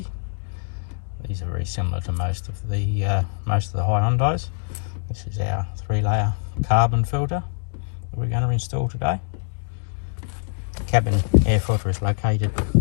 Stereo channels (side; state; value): right; silent; digital silence